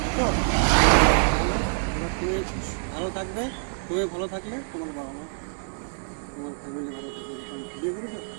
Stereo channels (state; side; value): silent; left; 61 dB below the other